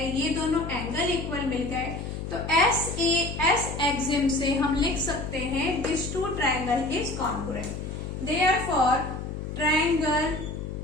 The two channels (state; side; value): noise; left; hum, 6 dB below the sound